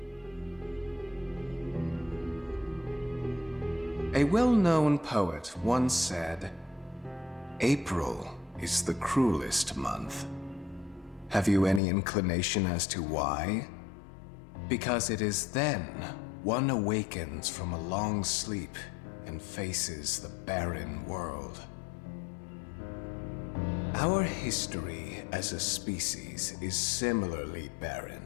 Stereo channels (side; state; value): right; drops out; at 11.8 s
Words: A well-known poet once said, "April is the cruelest month." Have you any inclination as to why? Because it is then one awakens from a long sleep and faces the barren world. Our history as a species is similarly barren,